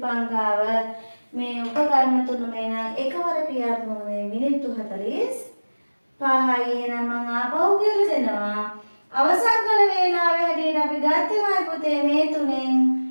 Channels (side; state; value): both; inverted; correlation -1.00